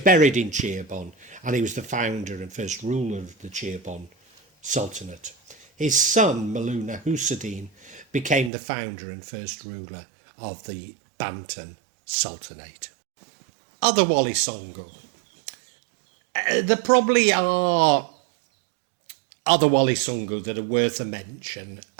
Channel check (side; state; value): left; drops out; at 8.5 s